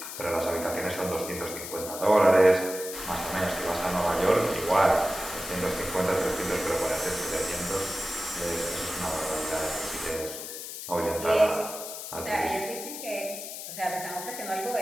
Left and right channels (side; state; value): left; noise; hiss, 9 dB below the sound